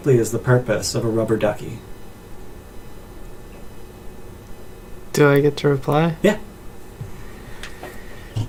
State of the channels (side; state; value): both; identical; correlation 1.00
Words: is the purpose of a rubber ducky? Do I get to reply? Yeah.